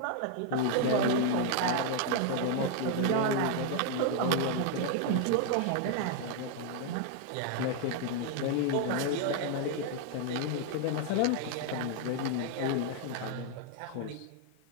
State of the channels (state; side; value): different; both; correlation 0.00